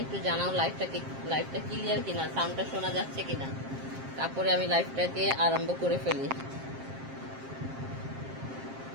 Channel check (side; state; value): left; late; 7.5 ms